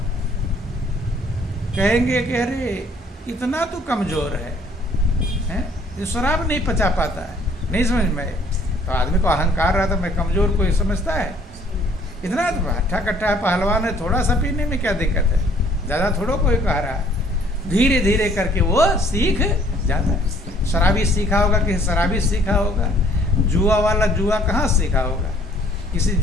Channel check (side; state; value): both; normal; correlation 0.59